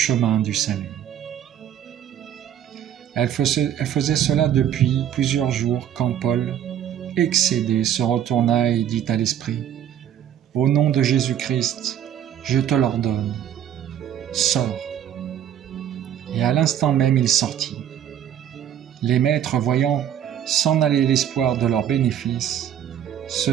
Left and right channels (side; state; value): left; quieter; 10.1 dB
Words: du salut. » Elle faisait cela depuis plusieurs jours quand Paul, excédé, se retourna et dit à l'esprit : « Au nom de Jésus-Christ, je te l'ordonne, sors. » Et à l'instant même il sortit. Les maîtres, voyant s'en aller l'espoir de leurs bénéfices, se